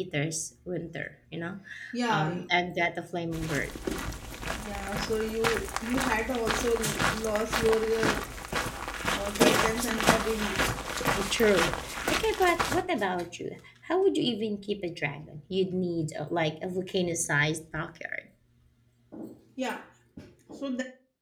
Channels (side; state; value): both; identical; correlation 1.00